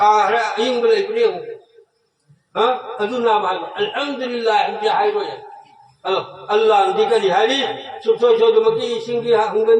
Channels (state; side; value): identical; both; correlation 1.00